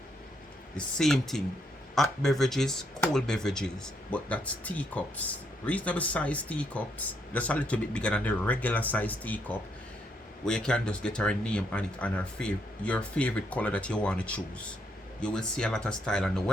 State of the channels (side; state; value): both; normal; correlation 0.75